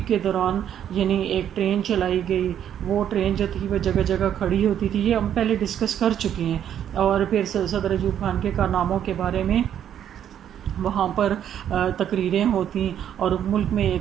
کے دوران یعنی ایک ٹرین چلائی گئی. وہ ٹرین جو تھی وہ جگہ جگہ کھڑی ہوتی تھی. یہ ہم پہلے ڈسکس کر چکے ہیں. اور پھر صدر ایوب خان کے کارناموں کے بارے میں وہاں پر تقریریں ہوتی اور ملک میں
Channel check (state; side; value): quieter; left; 9.8 dB